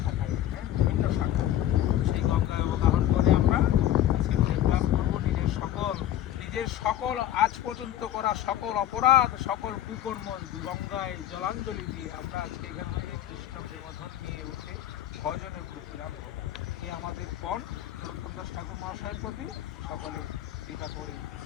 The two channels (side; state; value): right; quieter; 12.2 dB